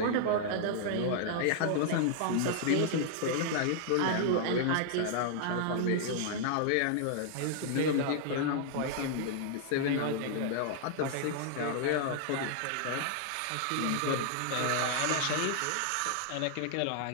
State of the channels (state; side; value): different; both; correlation 0.00